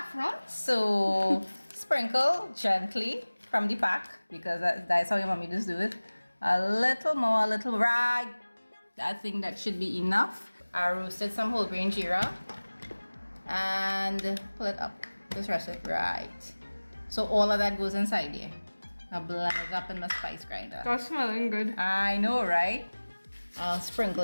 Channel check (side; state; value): both; inverted; correlation -1.00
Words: So sprinkle gently from the pack because that's how your mommy just do it. A little more, right. I think that should be enough. I roasted some whole grain jeera and pull it up. Just rest it right. So all of that goes inside here. I blend it up in my spice grinder. That's smelling good. I know, right? I'll sprinkle